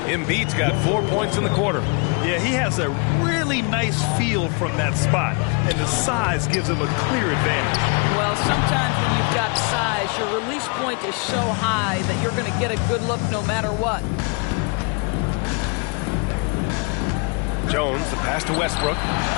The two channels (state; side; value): quieter; right; 33.9 dB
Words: Embiid's got 4 points in the quarter. Yeah, he has a really nice feel from that spot, and the size gives him a clear advantage. Well, sometimes when you've got size, your release point is so high that you're going to get a good look no matter what. Jones, the pass to Westbrook.